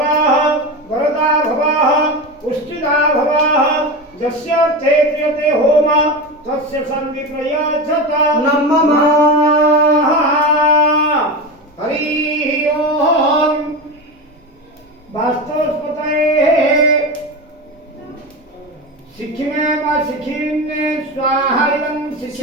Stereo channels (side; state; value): both; normal; correlation 0.22